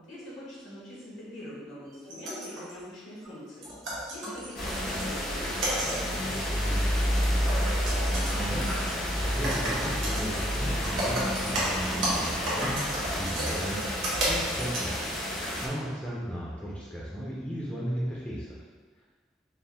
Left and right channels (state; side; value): normal; both; correlation 0.66